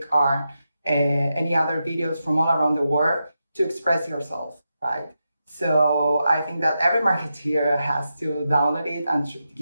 or any other videos from all around the world to express yourself, right? So I think that every marketeer has to download it and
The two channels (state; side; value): inverted; both; correlation -0.88